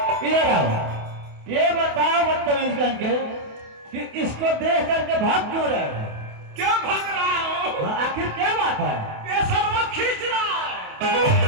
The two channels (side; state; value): left; late; 28 ms